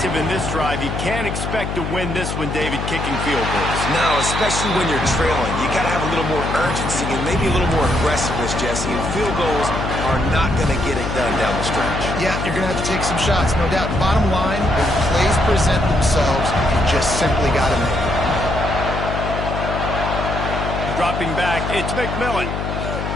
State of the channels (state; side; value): noise; left; hum, 4 dB below the sound